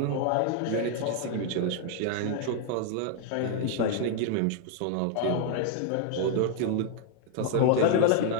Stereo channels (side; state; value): both; different; correlation 0.00